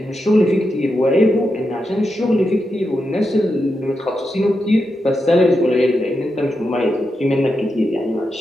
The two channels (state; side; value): normal; both; correlation 0.87